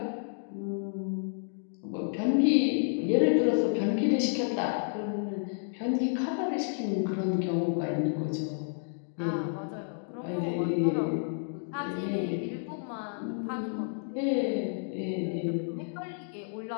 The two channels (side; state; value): right; silent; digital silence